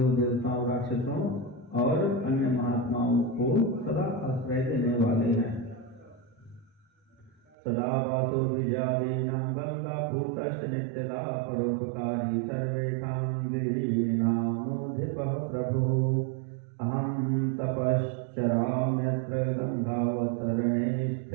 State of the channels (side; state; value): left; drops out; at 7.6 s